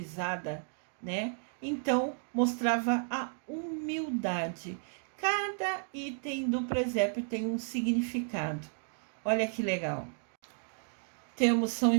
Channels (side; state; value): left; silent; 56 dB below the other